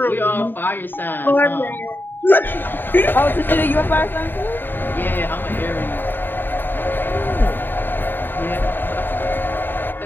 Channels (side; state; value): right; late; 0.094 ms